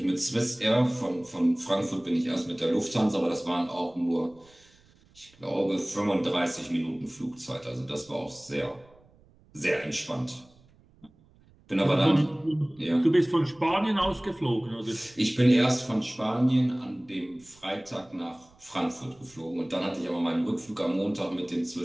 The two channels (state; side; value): noise; right; rumble, 29 dB below the sound